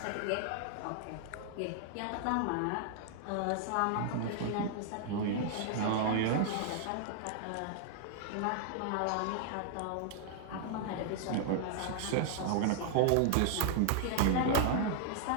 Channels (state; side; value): different; both; correlation 0.00